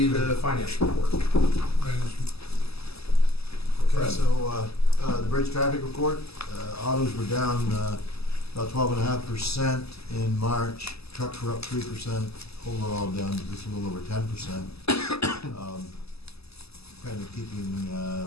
the finance report. Management. Okay, Fred? so the bridge traffic report, autos were down about 12.5% in March. Trucks were up 3%. Overall down just a little over 10%. Kind of keeping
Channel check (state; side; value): late; right; 0.78 ms